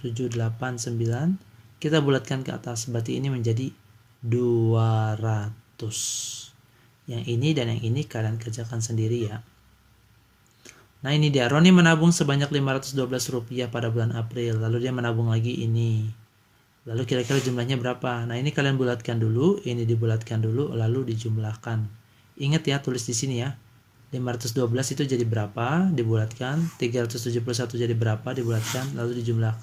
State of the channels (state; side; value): identical; both; correlation 1.00